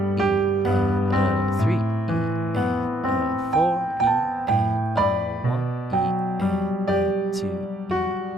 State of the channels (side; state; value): both; normal; correlation 0.69